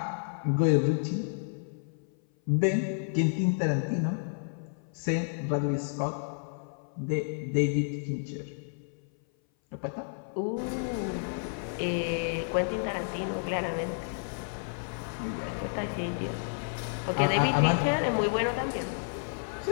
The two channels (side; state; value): right; silent; 56 dB below the other